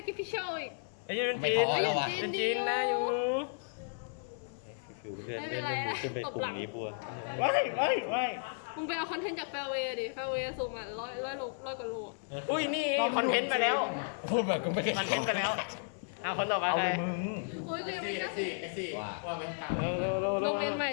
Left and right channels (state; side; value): silent; right; 55 dB below the other